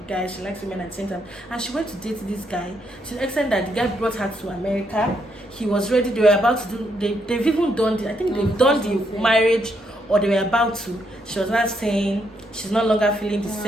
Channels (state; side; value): normal; both; correlation 0.76